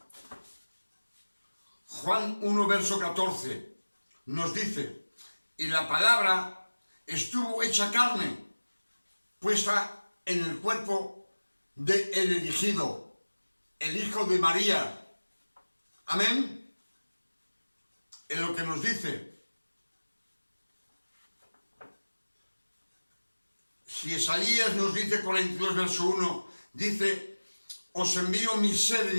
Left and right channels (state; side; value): inverted; both; correlation -1.00